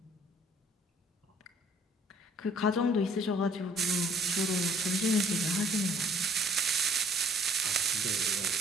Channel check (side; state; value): both; normal; correlation 0.58